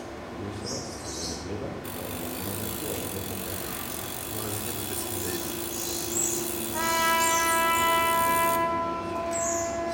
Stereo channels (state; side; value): identical; both; correlation 1.00